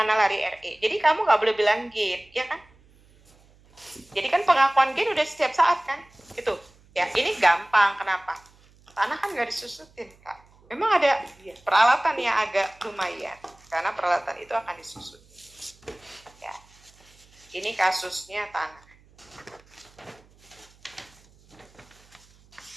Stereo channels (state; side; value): noise; right; hum, 29 dB below the sound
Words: lari RE? Jadi kamu nggak boleh bilang gain, ya kan? Jadi kan pengakuan gain udah setiap saat kan? Itu ya, ini gampang. Kenapa? Tanah kan nggak disusutin kak. Memang ada peralatan yang agak lumayan karena peralatan itu akan disusut. Ya, ini kasusnya tanah.